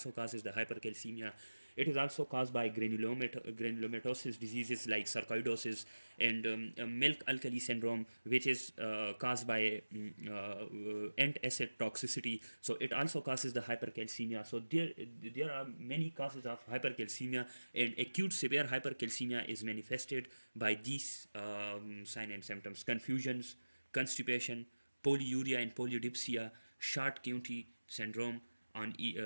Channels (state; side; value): inverted; both; correlation -1.00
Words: causes the hypercalcemia. It is also caused by granulomatosis diseases like sarcoidosis and milk alkali syndrome, which is caused by antacid toxicity. So it also causes the hypercalcemia. So there are many causes of hypercalcemia, and acute severe hypercalcemia is manifested by these signs and symptoms: confusions, constipation, polyuria and polydipsia, Short-County syndrome on